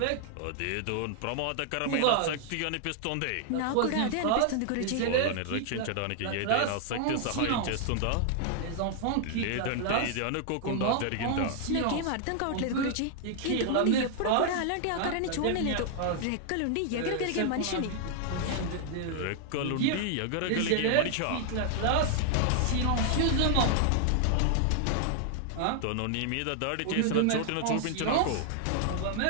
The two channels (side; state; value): both; different; correlation 0.00